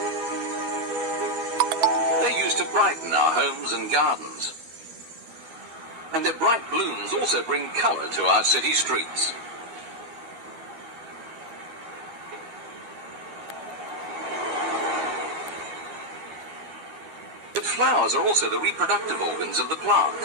They're used to brighten our homes and gardens. And their bright blooms also bring colour to our city streets. But flowers are also the reproductive organs of the plant.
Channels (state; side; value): late; left; 12 ms